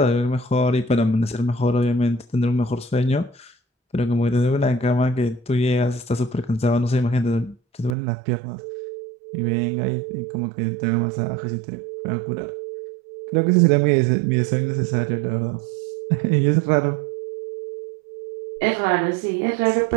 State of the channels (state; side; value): drops out; left; at 8.0 s